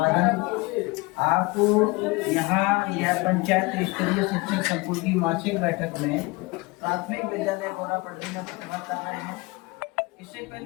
आपको यहाँ यह पंचायत स्तरीय शिक्षक संकुल की मासिक बैठक में प्राथमिक विद्यालय गौरा पटरी में प्रतिभा कर रहे हैं। इससे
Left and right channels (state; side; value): quieter; right; 24.3 dB